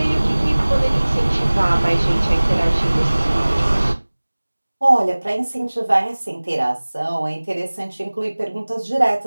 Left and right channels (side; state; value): both; inverted; correlation -1.00